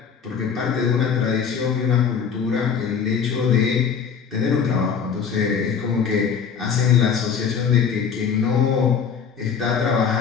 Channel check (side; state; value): right; quieter; 6.8 dB